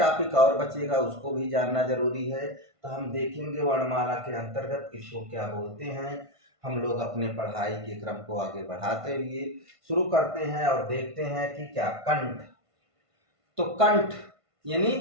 और बचेगा, उसको भी जानना जरूरी है। तो हम देखेंगे वर्णमाला के अंतर्गत किसको क्या बोलते हैं। हम लोग अपने पढ़ाई के क्रम को आगे बढ़ाते हुए शुरू करते हैं और देखते हैं कि क्या कंठ। तो कंठ यानी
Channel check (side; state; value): left; late; 1.5 ms